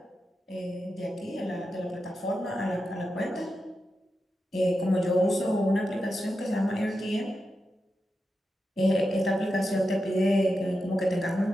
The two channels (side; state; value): both; normal; correlation 0.89